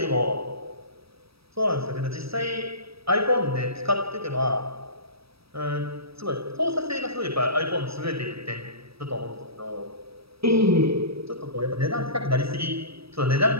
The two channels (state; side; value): late; left; 0.77 ms